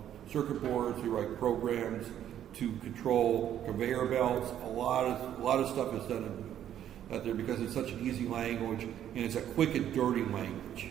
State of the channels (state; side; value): quieter; left; 10.7 dB